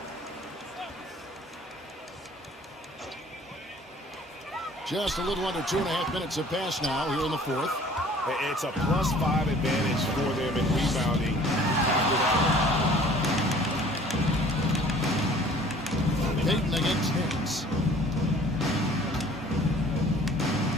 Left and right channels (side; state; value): both; normal; correlation 0.51